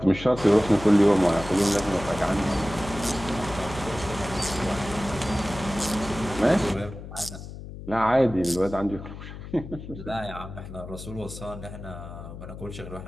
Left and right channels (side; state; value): left; noise; hum, 12 dB below the sound